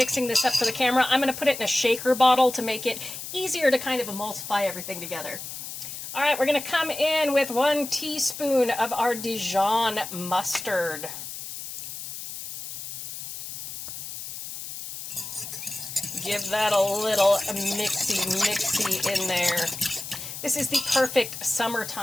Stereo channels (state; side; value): noise; left; hiss, 9 dB below the sound